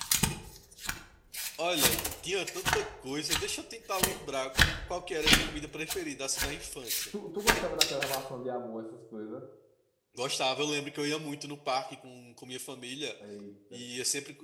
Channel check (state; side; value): identical; both; correlation 1.00